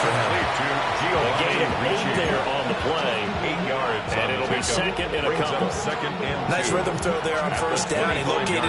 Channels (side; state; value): both; identical; correlation 1.00